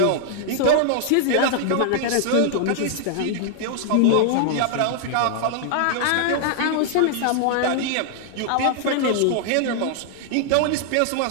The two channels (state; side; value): different; both; correlation 0.00